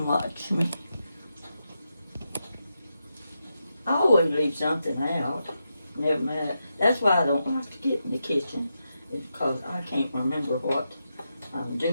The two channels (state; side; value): inverted; both; correlation -0.86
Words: watch me. I always leave something out. Never mind. That's why I don't like to get in the kitchen. It's because I can't remember what I'm